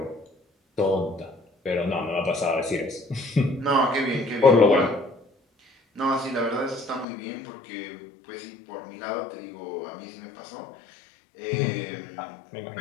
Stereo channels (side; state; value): right; drops out; at 7.1 s